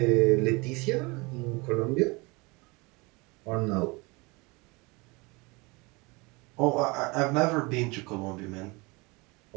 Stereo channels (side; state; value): left; quieter; 26.3 dB